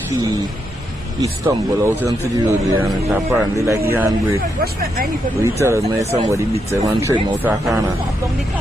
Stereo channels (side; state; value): both; normal; correlation 0.81